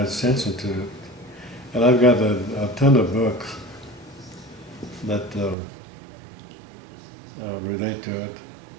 attention to it. And I've got a ton of books that relate to it.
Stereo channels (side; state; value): left; drops out; at 5.6 s